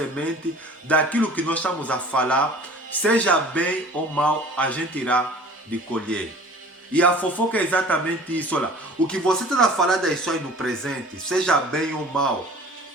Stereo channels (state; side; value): normal; both; correlation 0.45